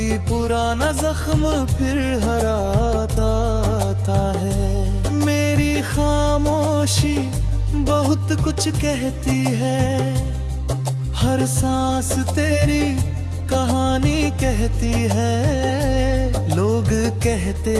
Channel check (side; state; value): both; identical; correlation 1.00